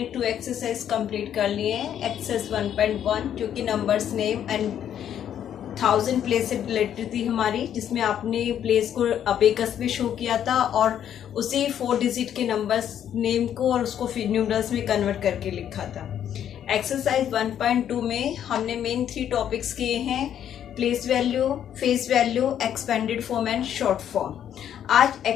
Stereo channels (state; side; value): quieter; right; 9.8 dB